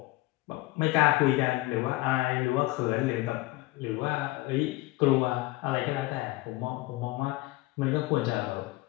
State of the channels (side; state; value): right; quieter; 19.4 dB